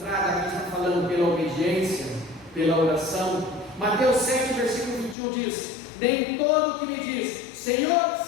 aqui está falando pela obediência, pela oração. Mateus 7, versículo 21 diz: nem todo que me diz Senhor,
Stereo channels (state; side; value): drops out; right; at 5.2 s